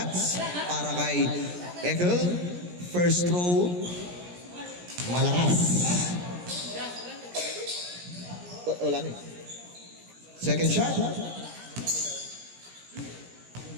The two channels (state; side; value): late; left; 17 ms